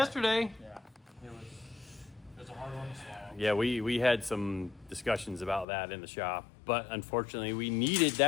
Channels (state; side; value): drops out; right; at 5.7 s